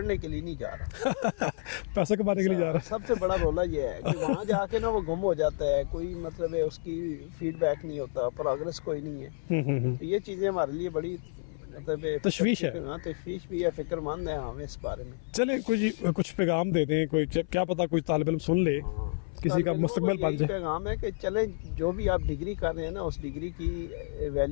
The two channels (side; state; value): right; silent; 57 dB below the other